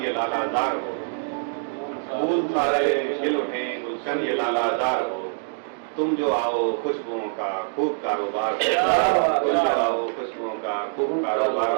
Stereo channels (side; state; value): left; silent; 62 dB below the other